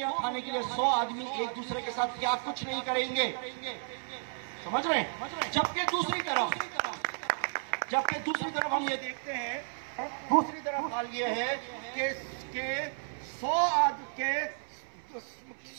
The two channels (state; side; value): silent; left; 56 dB below the other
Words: کھانے کے لیے 100 آدمی ایک دوسرے کے ساتھ کیا کچھ نہیں کریں گے؟ سمجھ رہے ہیں؟ جبکہ دوسری طرف ہم یہ دیکھتے ہیں، دوسری طرف حال یہ ہے کہ